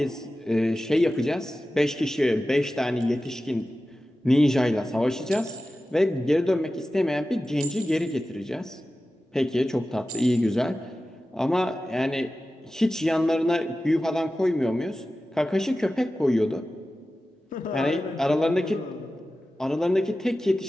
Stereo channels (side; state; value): both; normal; correlation 0.94